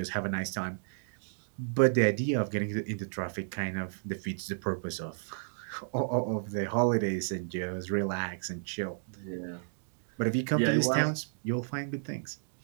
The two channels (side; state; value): left; silent; digital silence